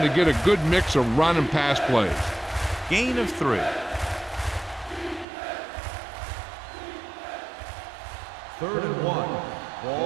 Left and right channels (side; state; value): left; drops out; at 5.2 s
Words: to get a good mix of run and pass plays. Gain of 3. Third and 1.